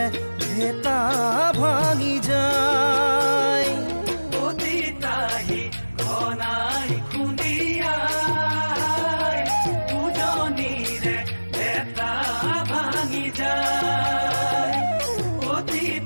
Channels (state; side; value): inverted; both; correlation -1.00